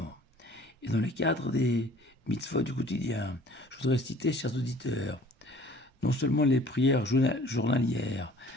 Et dans le cadre des mitzvot du quotidien, je voudrais citer, chers auditeurs, non seulement les prières journalières,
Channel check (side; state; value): both; normal; correlation 0.51